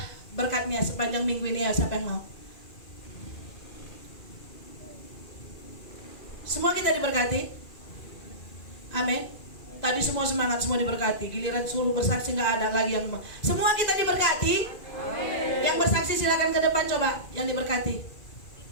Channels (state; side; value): late; right; 2.4 ms